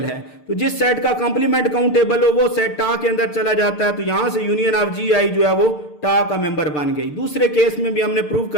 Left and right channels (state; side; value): late; right; 6.7 ms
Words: है। तो जिस सेट का कंप्लीमेंट काउंटेबल हो वो सेट टा के अंदर चला जाता है। तो यहां से यूनियन ऑफ जी आई जो है वो टा का मेंबर बन गई। दूसरे केस में भी हमने प्रूव